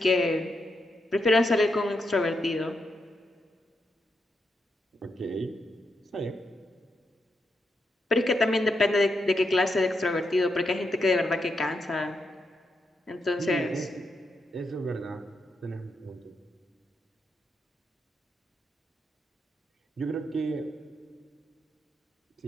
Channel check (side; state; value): both; normal; correlation 0.82